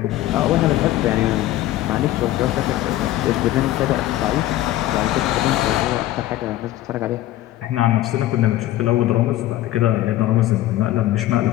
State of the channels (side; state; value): right; quieter; 14.8 dB